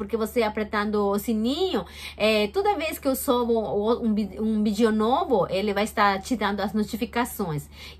você apertando o sininho, toda vez que eu subo um vídeo novo, ele vai estar te dando as notificações.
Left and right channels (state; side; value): identical; both; correlation 1.00